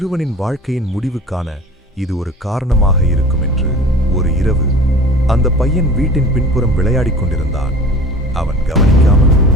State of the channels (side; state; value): both; normal; correlation 0.41